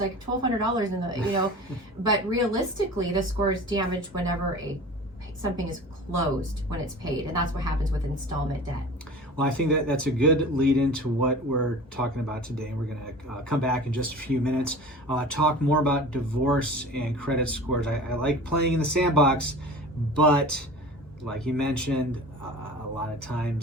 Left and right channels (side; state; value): both; normal; correlation 0.38